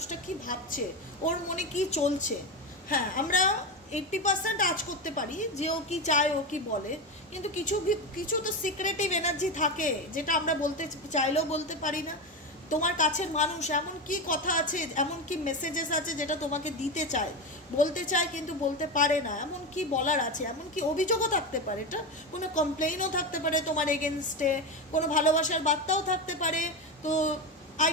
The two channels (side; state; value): both; normal; correlation 0.17